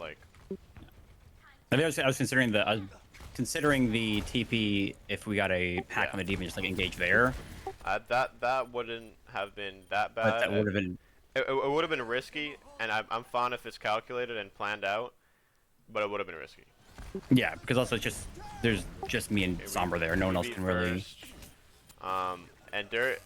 I think I was considering the TP if we got a pack Yeah. on the deep and just like engage there. that wouldn't have been that But bad. that would have been It would have been risky, and I'm fine if it's calculated and planned out, but it would have been risky. yeah, because also it's just there's just me and Okay, Sombra there. No one else beat can really. first. And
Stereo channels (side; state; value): both; identical; correlation 1.00